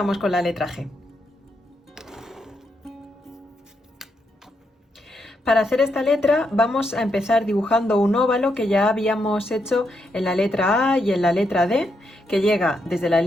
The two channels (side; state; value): both; normal; correlation 0.80